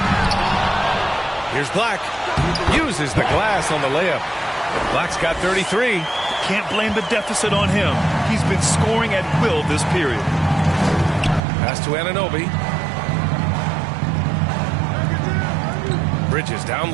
Here's Black. Uses the glass on the layup. Black's got 33. can't blame the deficit on him. He's been scoring at will this period. Pass to Anunoby. Bridges down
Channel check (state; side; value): drops out; left; at 11.4 s